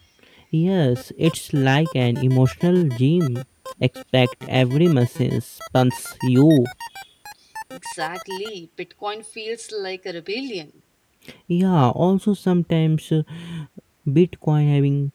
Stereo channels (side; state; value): both; identical; correlation 1.00